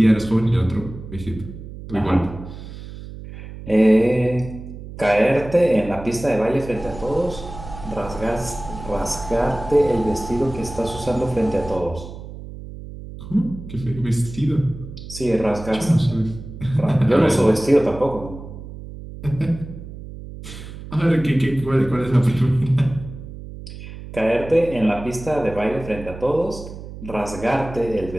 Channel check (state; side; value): noise; right; hum, 13 dB below the sound